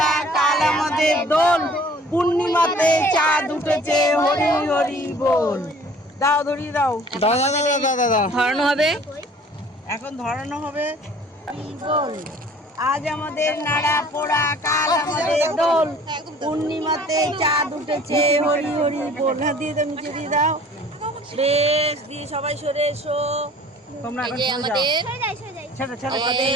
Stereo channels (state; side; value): normal; both; correlation 0.51